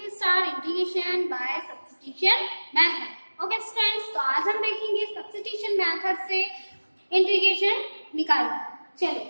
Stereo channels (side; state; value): both; inverted; correlation -1.00